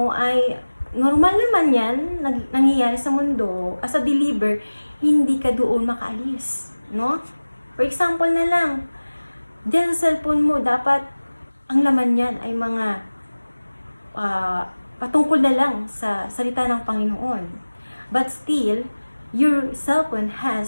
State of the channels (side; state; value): both; inverted; correlation -1.00